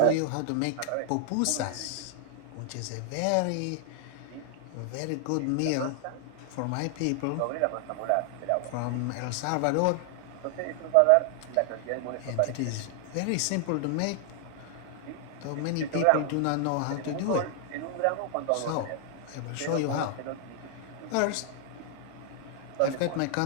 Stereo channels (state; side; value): different; both; correlation 0.00